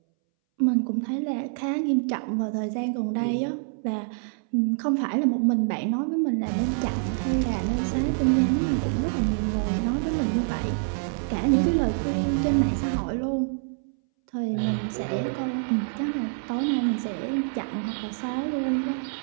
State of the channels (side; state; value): left; silent; 61 dB below the other